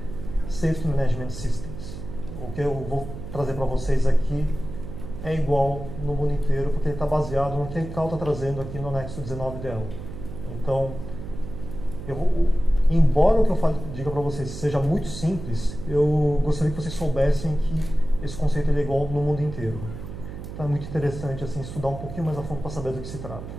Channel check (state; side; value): noise; right; hum, 10 dB below the sound